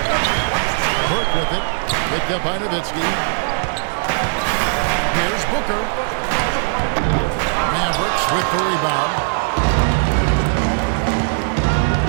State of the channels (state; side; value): silent; left; digital silence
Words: Burke with it. Picked up by Nowitzki. Here's Booker. Mavericks with the rebound.